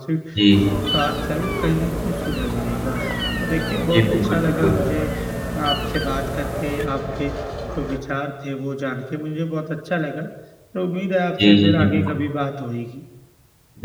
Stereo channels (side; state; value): both; identical; correlation 1.00